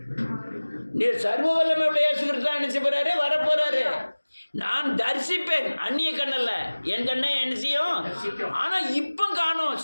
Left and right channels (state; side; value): inverted; both; correlation -1.00